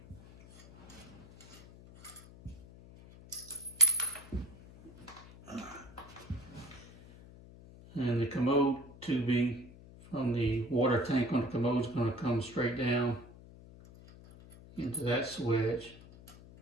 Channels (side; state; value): left; noise; hum, 20 dB below the sound